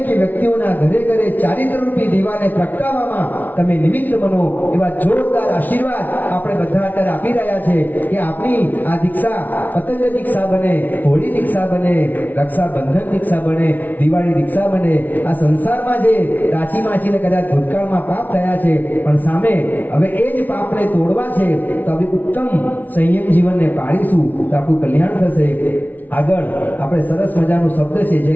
વ્યક્તિઓના ઘરે ઘરે ચારિત્રરૂપી દીવાને પ્રગટાવવામાં તમે નિમિત્ત બનો. એવા જોરદાર આશીર્વાદ આપણે બધા અત્યારે આપી રહ્યા છે કે આપણી આ દીક્ષા પતંગ દીક્ષા બને, હોળી દીક્ષા બને, રક્ષાબંધન દીક્ષા બને, દિવાળી દીક્ષા બને. આ સંસારમાં જે રાચી માચીને કદાચ ભૂતકાળમાં પાપ થયા છે, પણ સામે હવે એ જ પાપને તોડવા છે, તો હવે ઉત્તમ સંયમ જીવનને પાળીશું તો આપણું કલ્યાણ થશે. આગળ આપણે સરસ મજાનો શબ્દ છે, જય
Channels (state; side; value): late; right; 0.080 ms